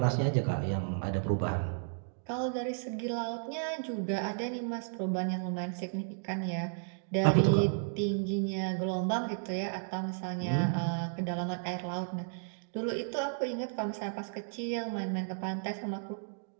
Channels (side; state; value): left; silent; digital silence